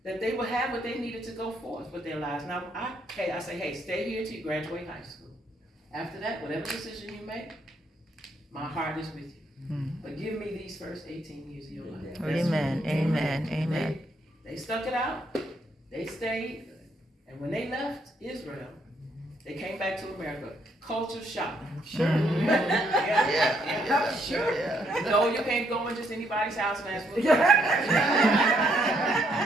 That they would have what they needed to go forth with their lives. Now, I say, hey, stay here till you graduate high school. After that, whatever decision you make, my heart is with you. But give me these first 18 years of your life. Amen. They stuck it out. They stayed. And when they left Israel, they came back to America. Culture shock. Sure. Sure. No, you can't go in just anybody's house and ask for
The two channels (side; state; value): both; normal; correlation 0.72